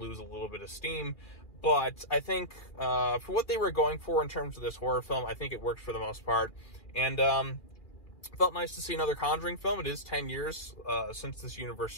a little bit of steam. But I think, for what they were going for in terms of this horror film, I think it worked for the most part. And, felt nice to see another Conjuring film. It is 10 years, since this universe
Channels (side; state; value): right; late; 2.4 ms